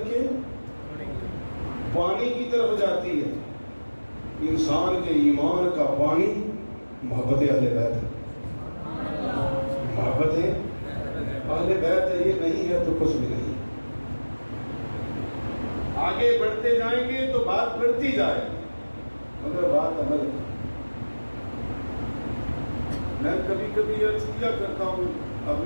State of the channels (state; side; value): inverted; both; correlation -1.00